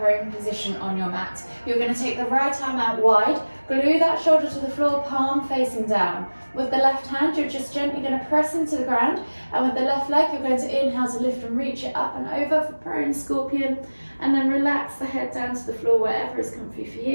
position on your mat. You're going to take the right arm out wide, glue that shoulder to the floor, palm facing down. With the left hand, you're just gently going to press into the ground. And with the left leg, you're going to inhale to lift and reach it up and over for prone scorpion. And then relax the head down to the floor wherever is comfy for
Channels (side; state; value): both; inverted; correlation -1.00